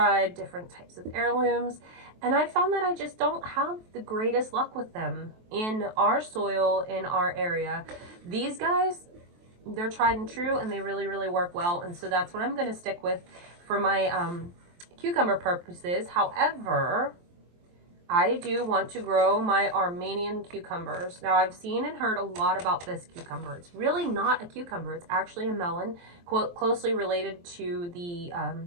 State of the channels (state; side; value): late; left; 23 ms